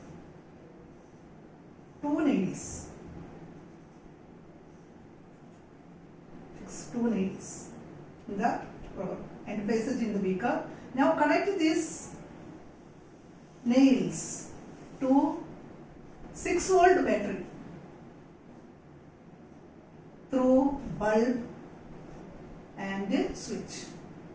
two nails. Fix two nails in the rubber and place it in the beaker. Now connect these nails to 6-volt battery through bulb and switch.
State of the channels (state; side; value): identical; both; correlation 1.00